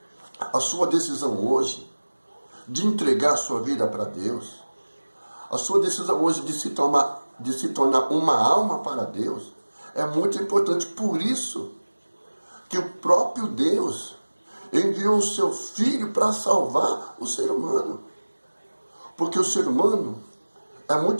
a sua decisão hoje de entregar a sua vida para Deus, a sua decisão hoje de se tornar uma alma para Deus, é muito importante. Por isso que o próprio Deus enviou o seu Filho para salvar o ser humano. Porque o ser humano é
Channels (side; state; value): both; inverted; correlation -1.00